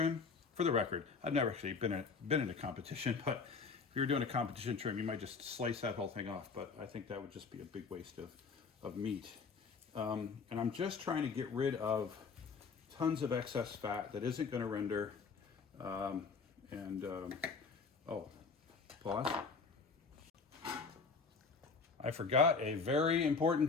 for the record, I've never actually been in a competition, but if you're doing a competition trim, you might just slice that whole thing off, but I think that would just be a big waste of meat. And I'm just trying to get rid of tons of excess fat that isn't going to render. Oh, pause. I forgot a very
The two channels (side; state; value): right; quieter; 4.9 dB